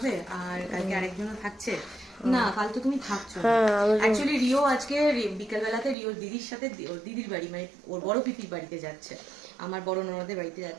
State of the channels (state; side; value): drops out; left; at 6.0 s